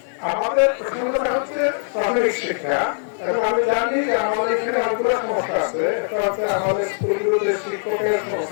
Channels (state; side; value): silent; right; digital silence